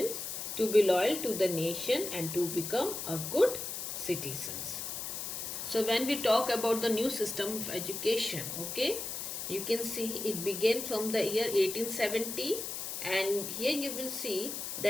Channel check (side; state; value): left; noise; hiss, 5 dB below the sound